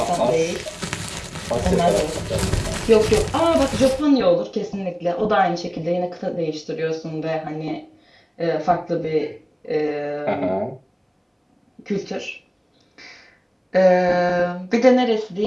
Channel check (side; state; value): both; identical; correlation 1.00